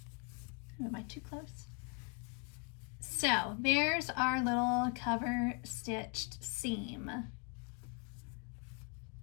Am I too close? So there's our little cover stitched seam.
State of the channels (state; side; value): quieter; right; 33.8 dB